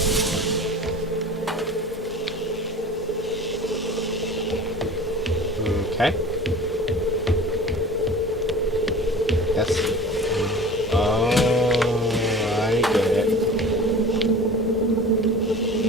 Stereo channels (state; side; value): normal; both; correlation 0.39